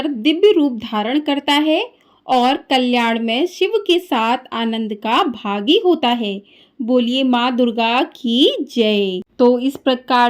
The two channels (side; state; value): both; identical; correlation 1.00